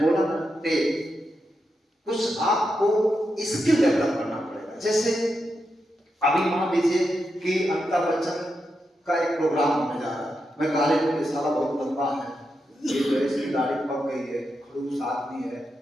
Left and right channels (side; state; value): both; normal; correlation 0.86